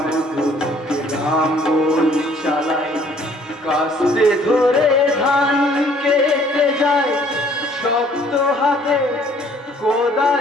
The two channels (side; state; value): both; normal; correlation 0.59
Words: বুকে লাঙ্গল চালাই, কাস্তে ধরে ধান কেটে যায়, শক্ত হাতে